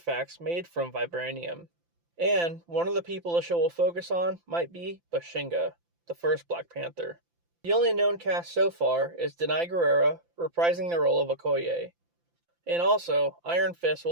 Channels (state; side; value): late; left; 5.8 ms